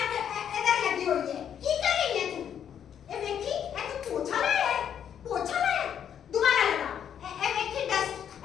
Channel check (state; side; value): quieter; right; 8.9 dB